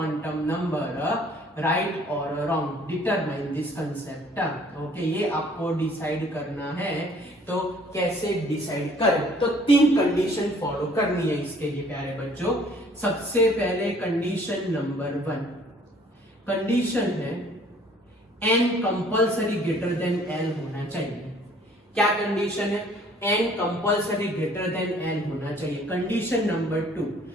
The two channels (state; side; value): normal; both; correlation 0.56